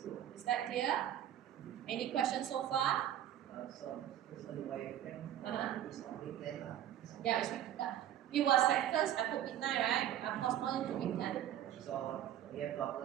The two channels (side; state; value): left; quieter; 11.4 dB